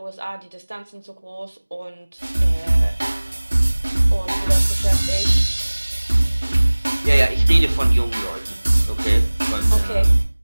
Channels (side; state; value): both; inverted; correlation -1.00